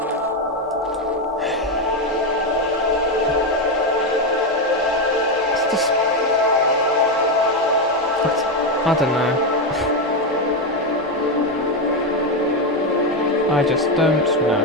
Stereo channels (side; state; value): both; normal; correlation 0.08